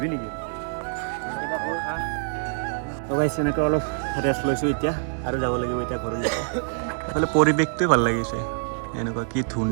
নেকি এনেকৈ অলপ ৰেষ্ট লৈছোঁ এতিয়া আৰু যাব লাগিব এতিয়া ঘৰলৈ এইফালে পৰিৱেশটোৱে ভাল লাগিছে এনেকুৱা কি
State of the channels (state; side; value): silent; left; digital silence